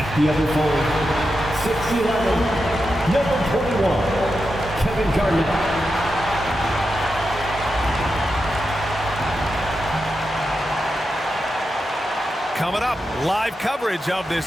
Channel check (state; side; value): normal; both; correlation 0.88